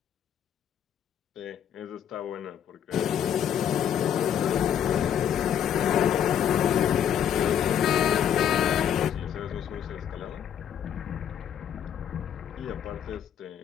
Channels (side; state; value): right; quieter; 9.2 dB